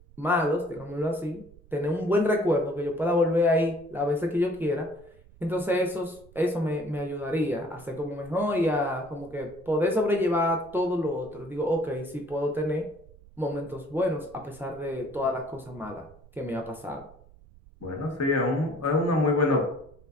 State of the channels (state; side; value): noise; right; rumble, 24 dB below the sound